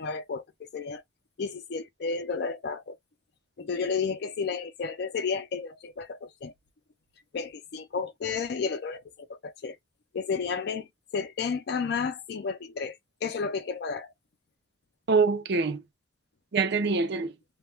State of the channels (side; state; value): both; normal; correlation 0.09